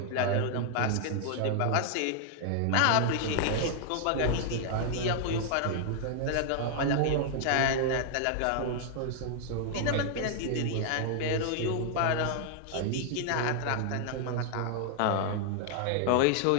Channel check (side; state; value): both; different; correlation 0.00